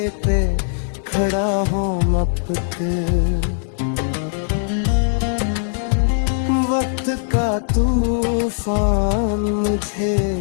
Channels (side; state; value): right; silent; digital silence